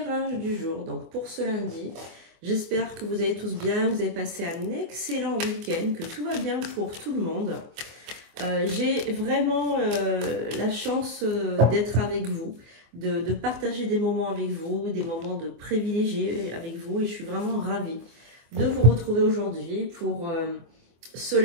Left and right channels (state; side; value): late; left; 24 ms